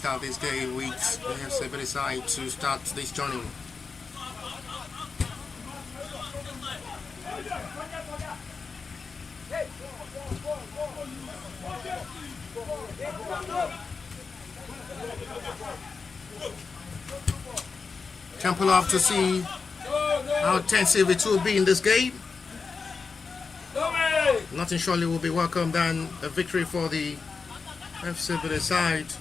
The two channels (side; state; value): right; quieter; 4.8 dB